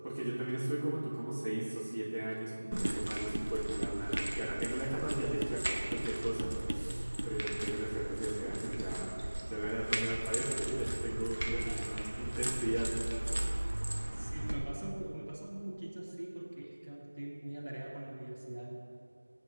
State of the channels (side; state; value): both; inverted; correlation -1.00